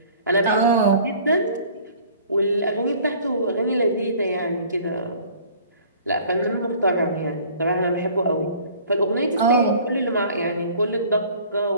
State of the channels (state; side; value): inverted; both; correlation -0.51